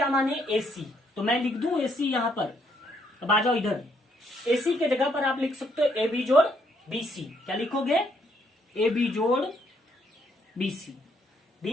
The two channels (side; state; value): both; normal; correlation 0.71